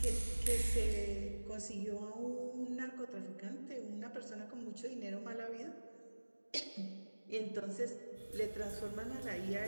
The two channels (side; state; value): both; inverted; correlation -1.00